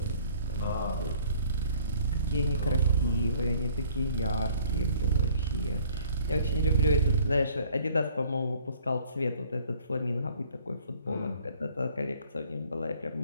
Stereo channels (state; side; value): inverted; both; correlation -0.56